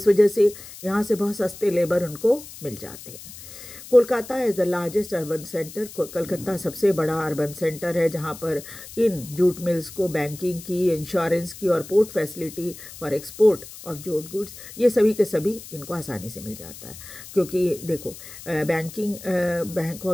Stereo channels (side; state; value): left; noise; hiss, 15 dB below the sound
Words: वजह से यहाँ से बहुत सस्ते लेबर उनको मिल जाते हैं। Kolkata is the largest urban centre. Calcutta सबसे बड़ा अर्बन सेंटर है जहाँ पर इन जूट मिल्स को बैंकिंग की, इंश्योरेंस की और port facility for export of jute goods, ये सभी के सभी इनको आसानी से मिल जाता है। क्योंकि देखो बैंक